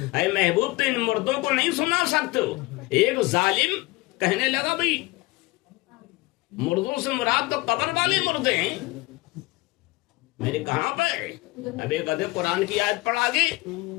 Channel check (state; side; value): quieter; right; 22.1 dB